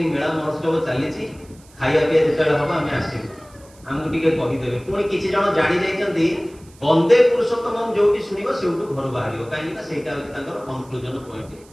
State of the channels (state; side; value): noise; right; hiss, 27 dB below the sound